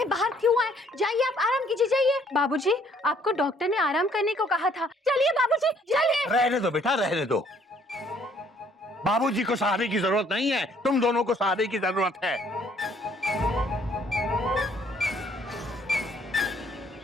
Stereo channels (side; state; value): both; normal; correlation 0.63